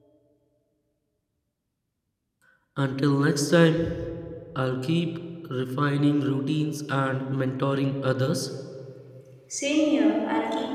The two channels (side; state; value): both; identical; correlation 1.00